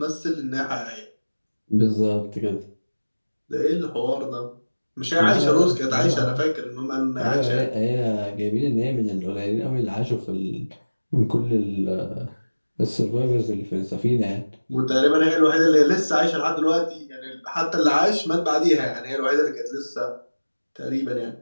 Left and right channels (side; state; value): both; inverted; correlation -1.00